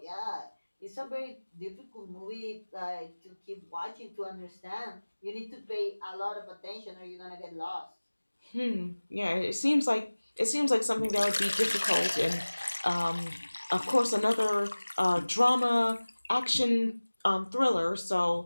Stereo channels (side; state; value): both; inverted; correlation -1.00